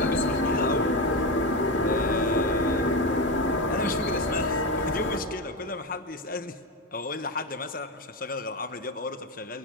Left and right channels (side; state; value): both; normal; correlation 0.16